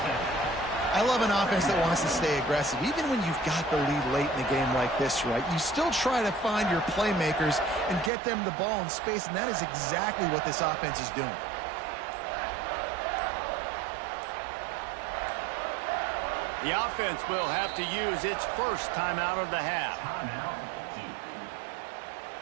I love an offense that wants to stay aggressive. Even when you've got the lead late in the game like this, right, you still try to find your playmakers and get them the ball in space, and that is exactly what this offense is doing. The offense will have to use its first timeout of the half. Timeout, Duke.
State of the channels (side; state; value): left; drops out; at 8.1 s